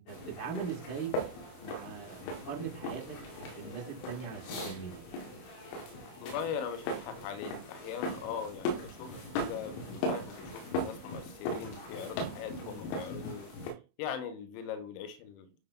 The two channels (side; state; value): right; late; 24 ms